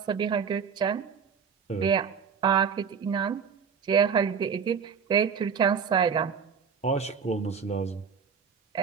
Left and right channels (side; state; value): left; quieter; 6.5 dB